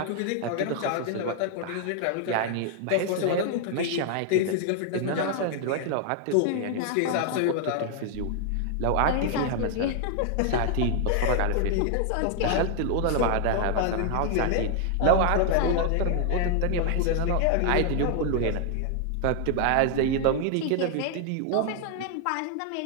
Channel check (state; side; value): different; both; correlation 0.00